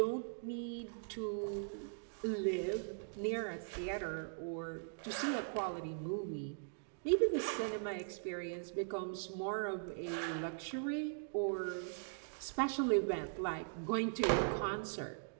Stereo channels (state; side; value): silent; left; digital silence